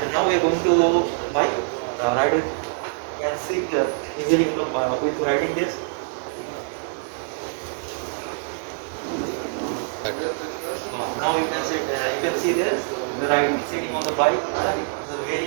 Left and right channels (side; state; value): left; silent; digital silence